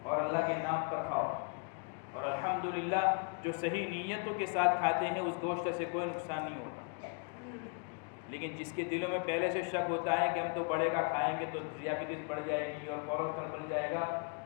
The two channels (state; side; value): quieter; right; 38.1 dB